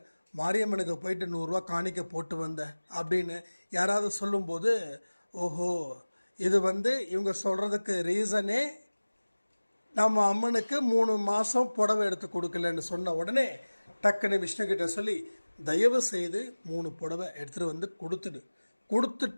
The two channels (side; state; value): both; inverted; correlation -1.00